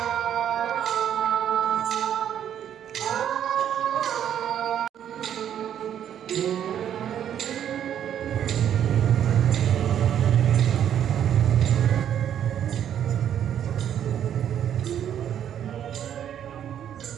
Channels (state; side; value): quieter; left; 9.8 dB